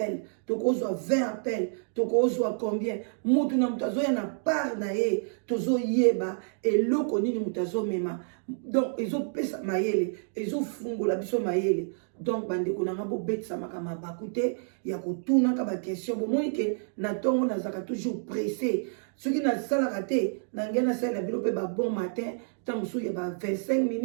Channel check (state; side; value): silent; left; digital silence